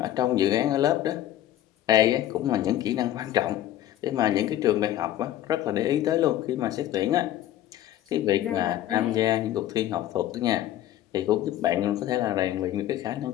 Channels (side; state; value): right; quieter; 12.8 dB